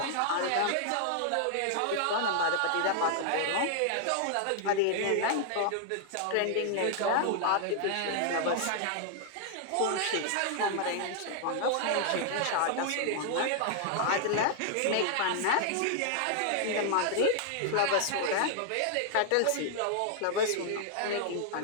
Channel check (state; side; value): different; both; correlation 0.00